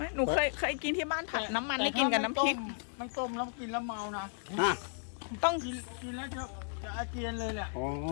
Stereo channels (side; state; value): right; silent; digital silence